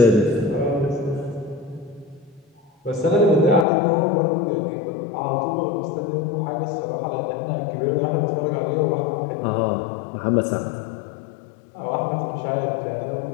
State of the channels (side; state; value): right; drops out; at 3.7 s